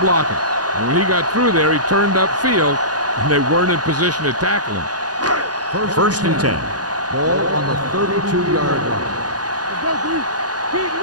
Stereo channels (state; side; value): late; left; 0.69 ms